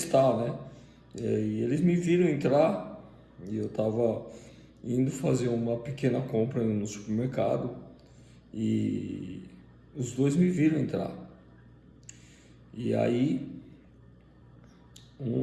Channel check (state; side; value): identical; both; correlation 1.00